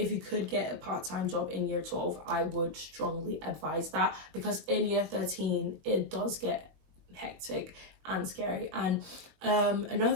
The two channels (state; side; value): late; left; 21 ms